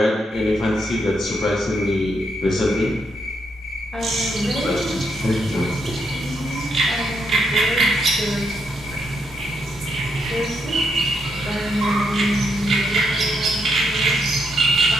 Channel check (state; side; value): normal; both; correlation 0.78